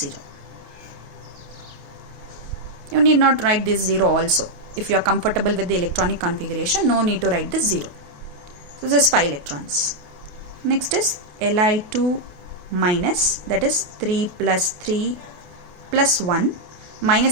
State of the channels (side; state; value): left; late; 28 ms